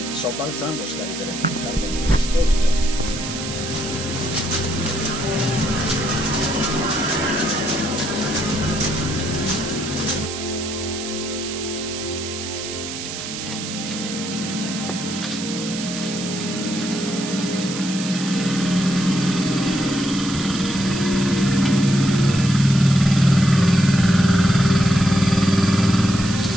sobbalzando scaricheremo il carico dove sto io.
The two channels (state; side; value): noise; right; hiss, 8 dB below the sound